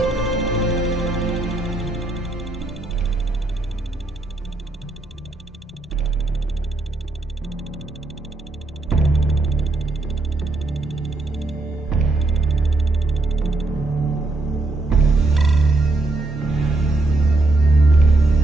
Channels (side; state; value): left; quieter; 3.0 dB